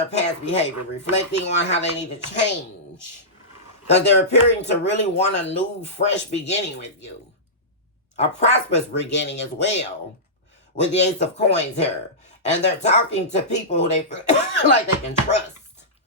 past behavior, reflecting on how they need to change. Because they're appearing to really want a new, fresh beginning with you. A prosperous beginning as well. With the Ace of Coins here. And they're talking to people who they feel like they can trust.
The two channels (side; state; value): both; normal; correlation -0.16